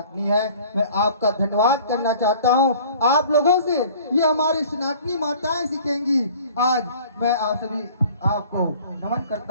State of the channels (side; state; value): both; inverted; correlation -0.49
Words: है। मैं आपका धन्यवाद करना चाहता हूं आप लोगों से, ये हमारी सनातनी माताएं सीखेंगी। आज मैं आप सभी आपको नमन